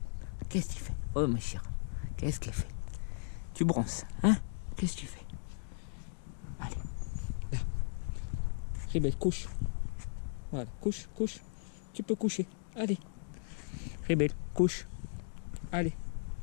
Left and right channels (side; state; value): right; silent; digital silence